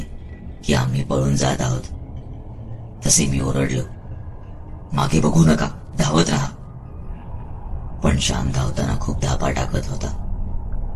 की आम्ही पळून जात आहोत. तसे मी ओरडलो, मागे बघू नका, धावत राहा. पण श्याम धावताना खूप धापा टाकत होता.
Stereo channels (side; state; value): both; identical; correlation 1.00